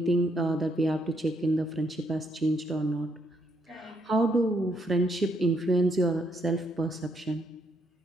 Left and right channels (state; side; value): normal; both; correlation 0.75